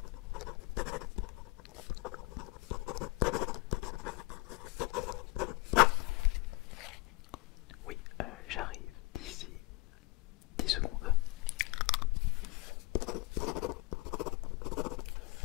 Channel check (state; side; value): quieter; right; 23.9 dB